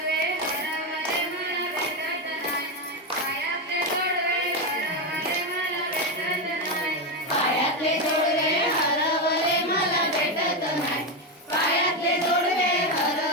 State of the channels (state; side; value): normal; both; correlation 0.10